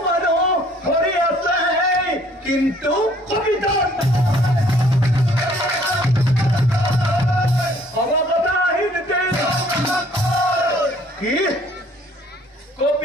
মানুষ হরি আছে কিন্তু কপিত অবগতা আহিতে কি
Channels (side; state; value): both; normal; correlation 0.59